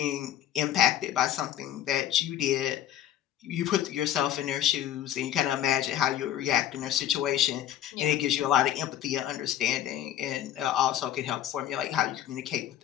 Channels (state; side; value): quieter; right; 11.5 dB